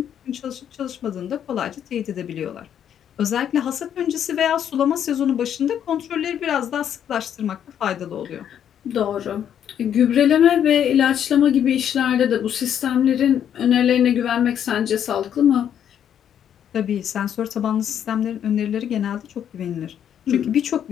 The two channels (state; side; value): quieter; right; 9.4 dB